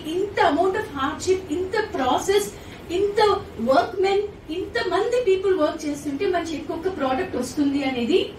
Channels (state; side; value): identical; both; correlation 1.00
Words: ఇంత amount of hardship, ఇంత process, ఇంత work men, ఇంత మంది పీపుల్ వర్క్ చేస్తుంటే మన చేతికి ఒక ప్రోడక్ట్ వస్తుంది అనేది